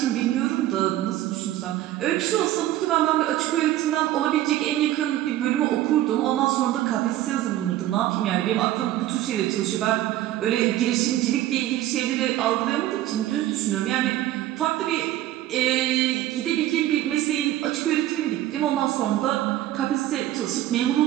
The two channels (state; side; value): quieter; left; 14.0 dB